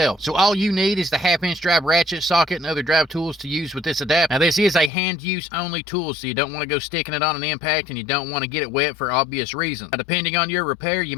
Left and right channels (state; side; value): drops out; right; at 4.9 s